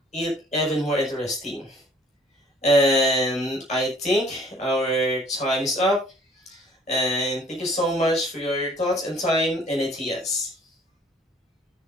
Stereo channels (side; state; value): both; normal; correlation 0.56